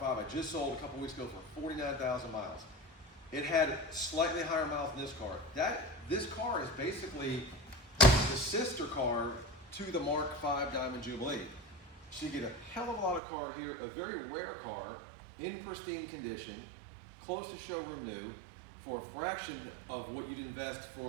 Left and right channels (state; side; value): drops out; left; at 13.2 s